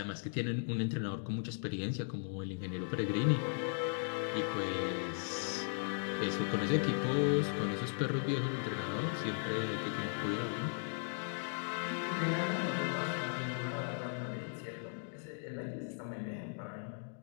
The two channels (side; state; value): right; silent; digital silence